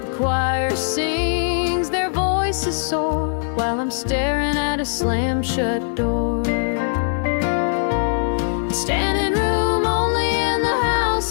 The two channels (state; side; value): silent; right; digital silence